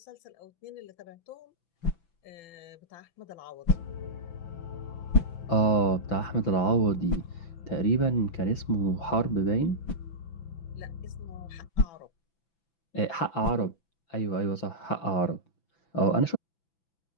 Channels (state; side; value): late; right; 6.0 ms